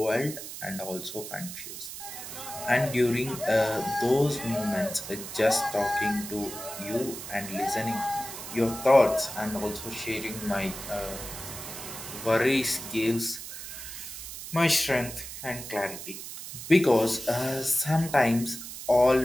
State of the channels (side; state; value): right; noise; hiss, 10 dB below the sound